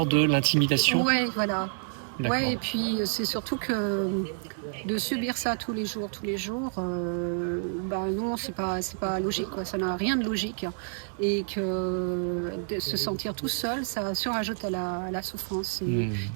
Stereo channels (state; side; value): silent; left; 59 dB below the other